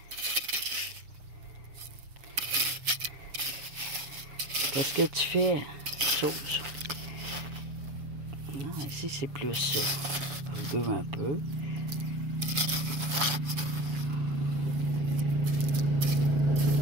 Qu'est-ce que tu fais? Chose. Non, ici c'est plus ça. Rugueux un peu.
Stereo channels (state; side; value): late; left; 7.1 ms